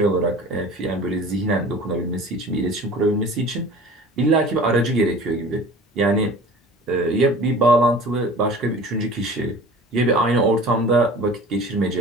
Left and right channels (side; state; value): both; normal; correlation 0.42